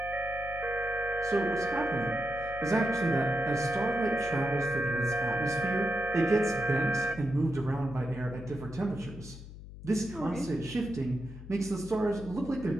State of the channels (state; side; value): noise; left; hum, 14 dB below the sound